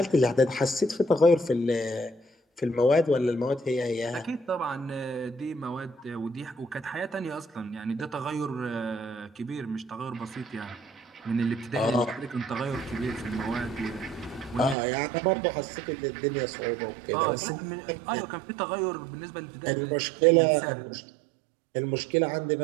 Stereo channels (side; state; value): left; drops out; at 14.8 s